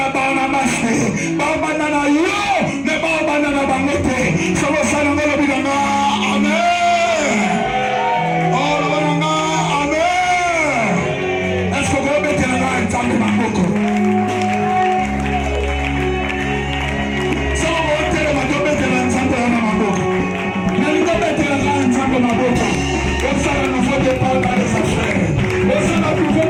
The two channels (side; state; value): both; identical; correlation 1.00